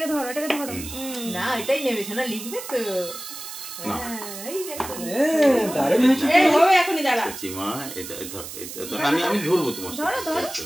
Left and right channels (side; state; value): right; noise; hiss, 10 dB below the sound